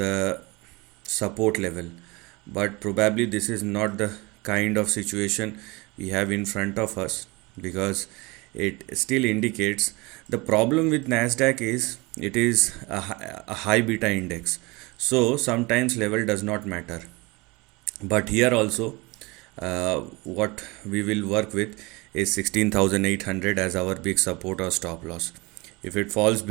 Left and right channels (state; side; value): quieter; left; 24.8 dB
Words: support level, but probably this is not the kind of situation we have in front of us, because it still indicates the problem with Nasdaq is it is a high beta index, so sometimes level does not matter. But here also, what we will work with is 16,800 as our big support or stop loss. If it falls